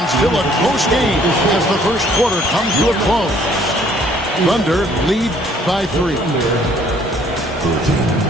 still a close game as the first quarter comes to a close. Thunder lead by 3.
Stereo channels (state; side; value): normal; both; correlation 0.60